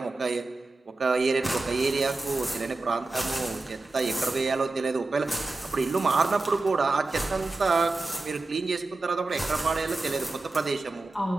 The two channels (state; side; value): quieter; left; 3.3 dB